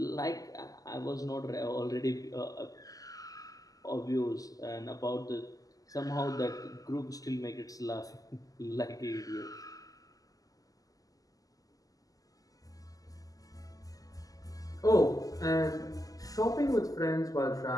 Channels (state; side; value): late; right; 0.17 ms